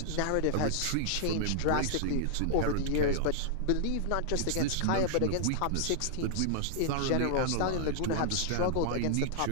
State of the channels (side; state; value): both; different; correlation -0.01